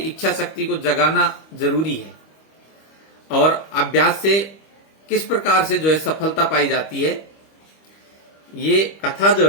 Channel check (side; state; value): right; late; 25 ms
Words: शक्ति को जगाना जरूरी है। और अभ्यास से किस प्रकार से जो है सफलता पाई जाती है, ये कथा जो